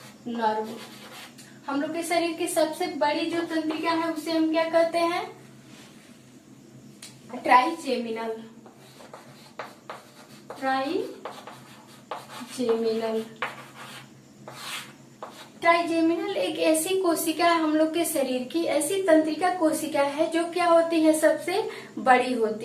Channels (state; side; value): identical; both; correlation 1.00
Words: नर्व। हम लोग के शरीर की सबसे बड़ी जो तंत्रिका है उसे हम क्या कहते हैं, ट्राइजेमिनल। ट्राइजेमिनल एक ऐसी कोशिका है हम लोग के शरीर की, ऐसी तंत्रिका कोशिका है जो क्या होती है, सबसे बड़ी